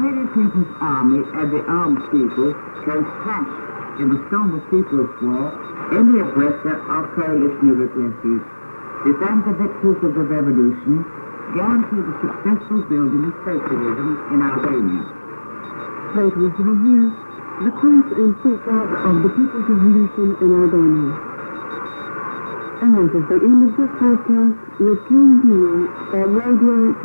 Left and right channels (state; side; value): inverted; both; correlation -1.00